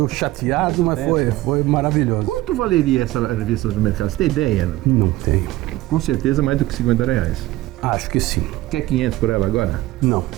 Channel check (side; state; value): left; quieter; 17.3 dB